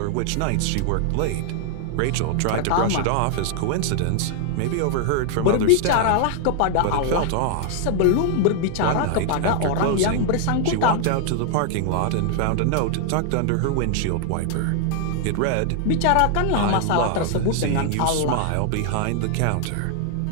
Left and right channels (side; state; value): both; different; correlation 0.00